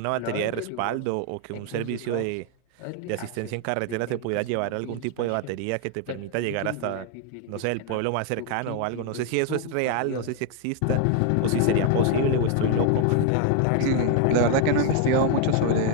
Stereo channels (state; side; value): different; both; correlation 0.00